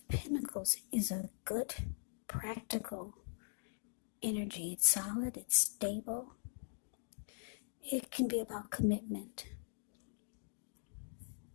Pentacles is a good, practical energy. It's solid, it's stable. It can be about commitment.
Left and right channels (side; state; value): right; silent; digital silence